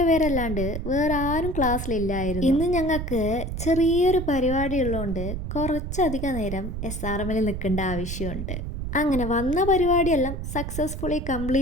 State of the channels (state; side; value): noise; right; rumble, 5 dB below the sound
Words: പേരല്ലാണ്ട് വേറെ ആരും ക്ലാസ്സിലില്ലായിരുന്നു. ഇന്ന് ഞങ്ങൾക്ക് ചെറിയൊരു പരിപാടി ഉള്ളതുകൊണ്ട് കുറച്ചധികം നേരം SRM നിൽക്കേണ്ട ആവശ്യമുണ്ട്. അങ്ങനെ വന്ന പരിപാടിയെല്ലാം സക്സസ്ഫുള്ളി